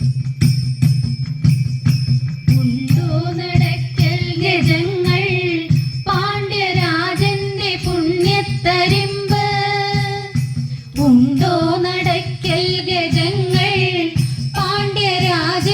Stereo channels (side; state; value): both; identical; correlation 1.00